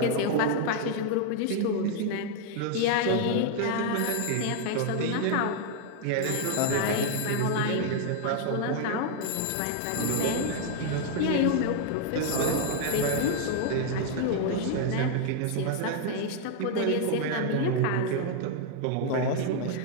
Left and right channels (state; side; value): different; both; correlation 0.00